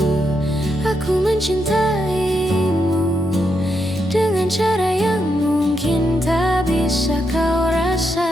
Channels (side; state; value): left; noise; rumble, 23 dB below the sound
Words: mencintaimu dengan cara yang mungkin tak bisa kau